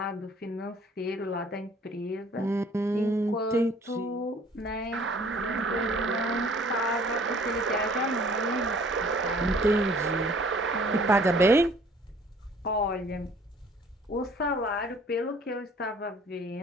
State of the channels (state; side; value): normal; both; correlation 0.55